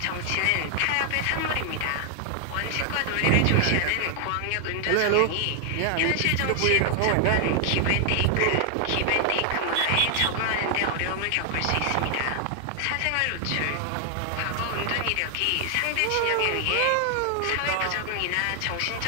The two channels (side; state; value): both; different; correlation 0.00